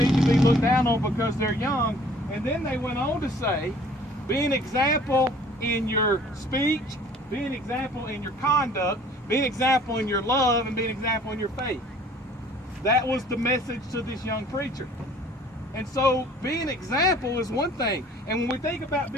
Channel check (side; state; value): both; normal; correlation 0.53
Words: to be looked down on because they're young. And then they went on to say, be an example in your speech, be an example in your conduct, be an example in your love, and be an example in your faith. That was the message to this young preacher. And so being an example is one thing. And when we think about